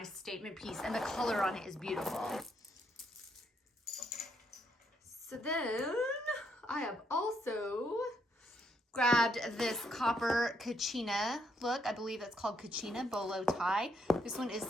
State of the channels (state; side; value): normal; both; correlation 0.74